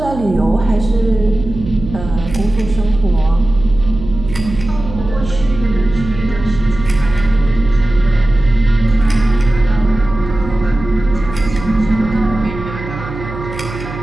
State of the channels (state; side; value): noise; right; hum, 10 dB below the sound